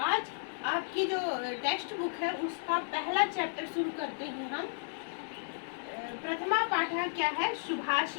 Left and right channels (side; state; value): right; silent; 55 dB below the other